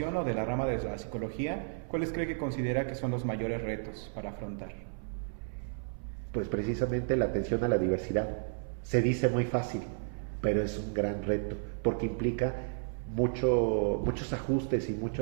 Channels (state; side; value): silent; left; 56 dB below the other